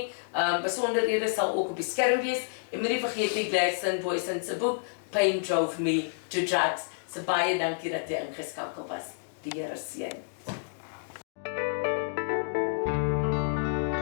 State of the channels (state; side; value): silent; right; digital silence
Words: Besonderhede sal ook op die skerm wees en moenie vergeet nie Gladstone Boysen se boek Pain Drove Me to Drugs. So baie dankie dat jy ingeskakel was. Die Here seën.